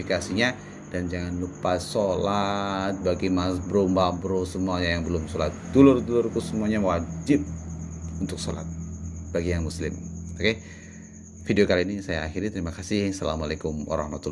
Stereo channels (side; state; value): both; identical; correlation 1.00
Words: Dan jangan lupa sholat. Bagi mas bro, mbak bro semuanya yang belum sholat, dulur-dulurku semuanya wajib untuk sholat bagi yang muslim. Oke, video kali ini saya akhiri. Terima kasih. Assalamualaikum